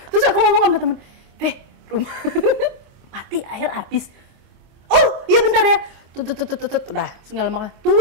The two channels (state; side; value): late; left; 25 ms